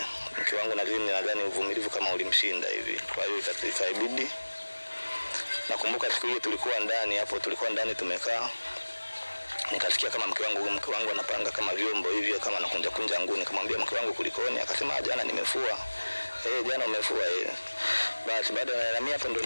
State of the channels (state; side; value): inverted; both; correlation -1.00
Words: mke wangu nadhani uvumilivu kama ulimshinda hivi, kwa hiyo ikabidi. Nakumbuka siku hiyo tulikuwa ndani tumekaa, nikasikia kama mke wangu anapanga kama vyombo hivi, kama anakunja nguni. Nikamwambia mke wangu kulikoni? Akasema jana nimefua. Jana umefua? Basi baada ya mimi hapo ndo